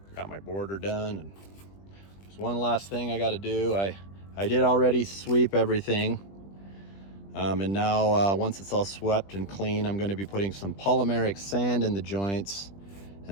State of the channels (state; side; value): late; right; 20 ms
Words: Got my border done, and there's one last thing I got to do. I did already sweep everything, and now once it's all swept and clean, I'm going to be putting some polymeric sand in the joints,